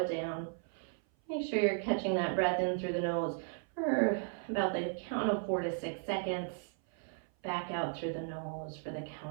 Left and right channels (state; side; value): silent; left; 54 dB below the other